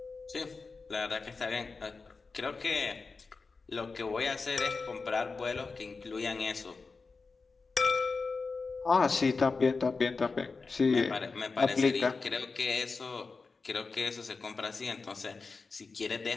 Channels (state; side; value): quieter; right; 4.3 dB